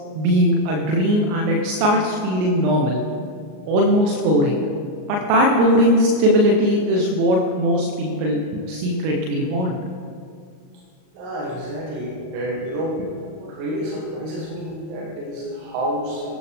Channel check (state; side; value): late; left; 38 ms